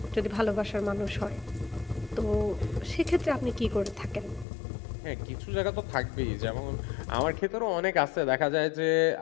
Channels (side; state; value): right; drops out; at 4.5 s